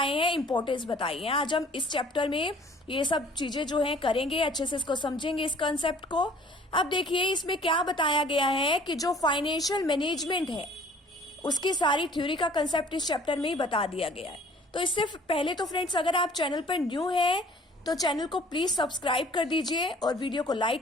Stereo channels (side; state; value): both; normal; correlation 0.53